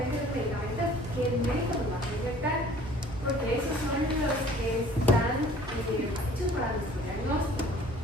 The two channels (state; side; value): normal; both; correlation 0.52